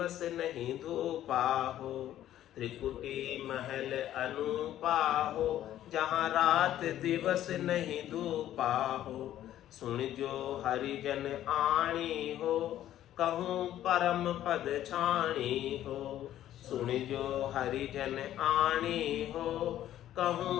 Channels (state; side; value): quieter; right; 12.3 dB